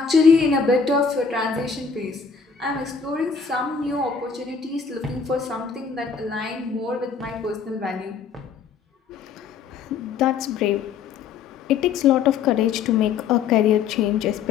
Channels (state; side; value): quieter; right; 6.0 dB